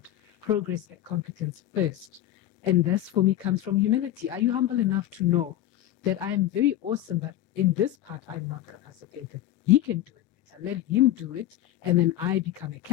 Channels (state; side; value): quieter; right; 13.2 dB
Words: progress and competence first. And this, for me, comes from humility. Are you humble enough to know that I am very awesome, but in this part, I'm not capacitated? He can do it better. Let him do it. And then I become a